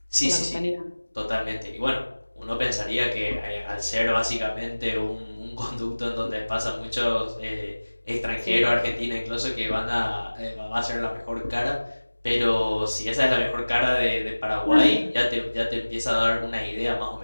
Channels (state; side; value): inverted; both; correlation -1.00